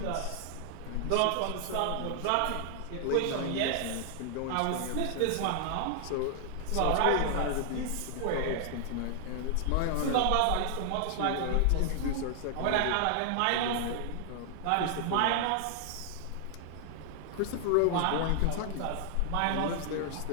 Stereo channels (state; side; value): different; both; correlation 0.00